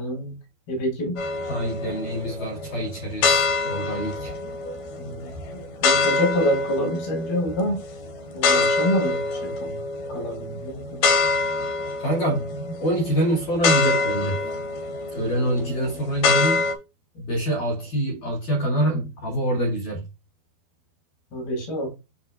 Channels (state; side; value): late; right; 12 ms